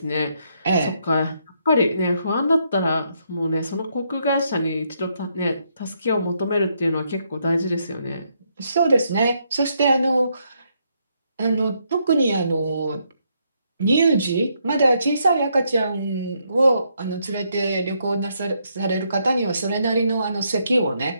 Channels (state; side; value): inverted; both; correlation -0.75